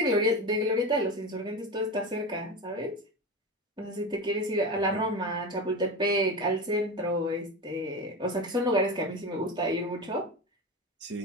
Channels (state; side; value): normal; both; correlation 0.23